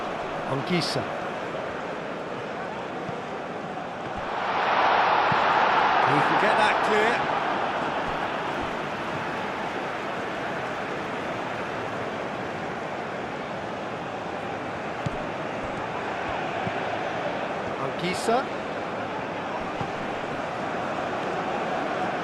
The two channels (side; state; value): both; identical; correlation 1.00